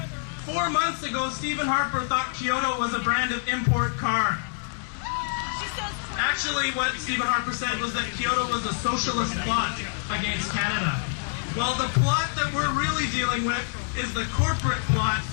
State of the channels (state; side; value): silent; right; digital silence